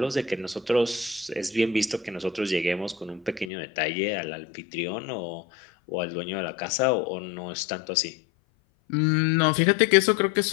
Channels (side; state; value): right; drops out; at 3.5 s